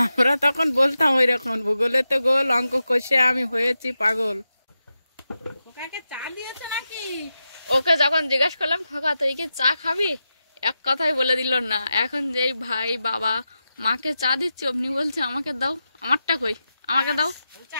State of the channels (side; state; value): both; inverted; correlation -0.90